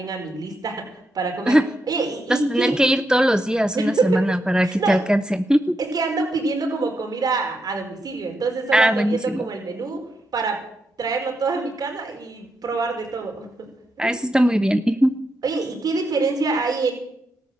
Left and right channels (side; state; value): both; normal; correlation 0.83